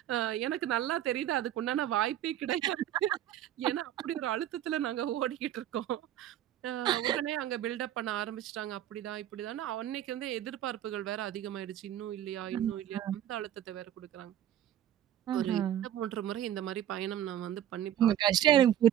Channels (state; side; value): quieter; left; 11.5 dB